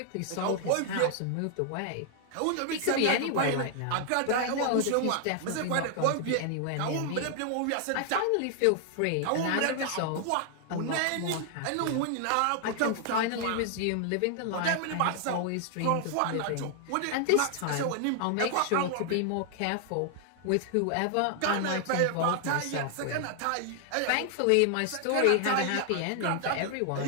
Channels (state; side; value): different; both; correlation 0.00